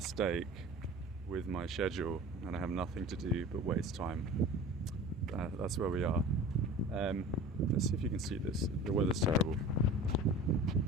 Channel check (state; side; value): normal; both; correlation 0.39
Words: with my schedule and I have nothing to do but waste time. That's where we are. Let's see if you can see this. The weather's terrible.